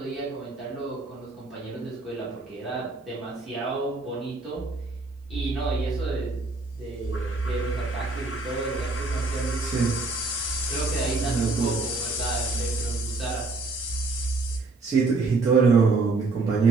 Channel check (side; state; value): left; quieter; 3.5 dB